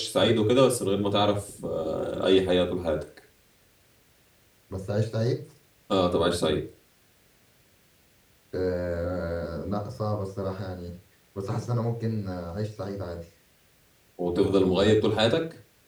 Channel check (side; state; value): both; identical; correlation 1.00